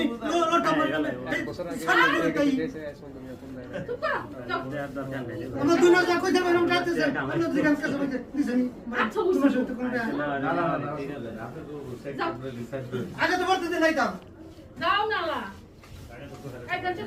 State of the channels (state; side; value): identical; both; correlation 1.00